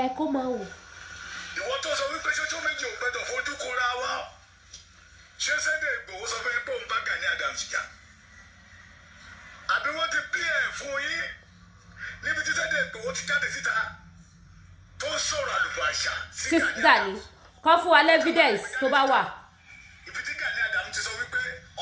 Kó máa wò. Ìwọ tó sọ wípé ṣoṣo méjì ò gbọdọ̀ fojú kóra wá. Ṣé Sunday Igboho sọ fún yín pé òun bá Gani Adams jà? Àbí wọ́n ti pín ẹ̀ fún yín níbi tí Sunday Igboho ti jáde síta tó ń sọ̀rọ̀ àlùfàǹṣà sí Gani. Kọ́ fún wa evidence tó bá wà. Ibi tí Gani Adams ti sọ wípé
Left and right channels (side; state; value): both; identical; correlation 1.00